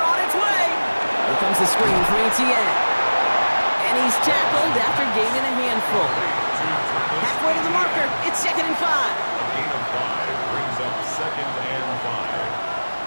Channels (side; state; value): both; inverted; correlation -1.00